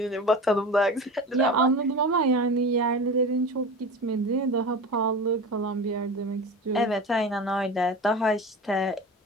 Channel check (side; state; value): both; normal; correlation 0.31